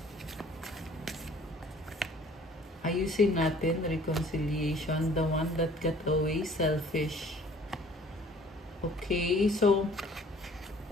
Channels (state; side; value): normal; both; correlation 0.53